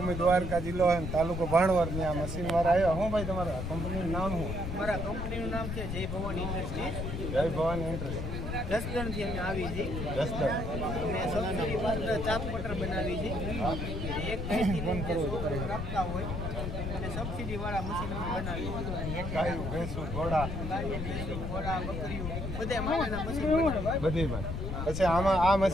દ્વારકા જિલ્લો અને તાલુકો ભાણવર ની આ મશીન વાળા આવ્યા. હું ભાઈ તમારા કંપનીનું નામ શું? મારા કંપનીનું નામ છે જય ભવાની ઇન્ડસ્ટ્રીઝ. જય ભવાની ઇન્ડસ્ટ્રીઝ. જસદણથી અમે આવી છે. જસદણ અને સબસિડી પાત્ર ચાપ કટર બનાવી છે. એક રાખતા હોય અને સબસિડી વાળા મશીન અમે બનાવી છે. ગાયું, ભેંસું, ઘોડા, ઘોડા, બકરીઓ બધા માટેના મશીન બનાવી. બધી માં. પછી આમાં આ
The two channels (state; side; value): noise; left; rumble, 4 dB below the sound